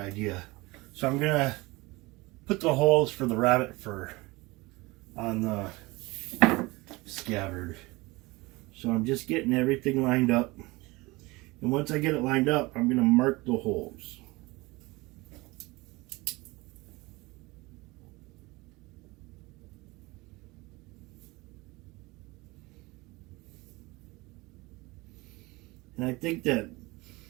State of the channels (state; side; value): quieter; left; 22.8 dB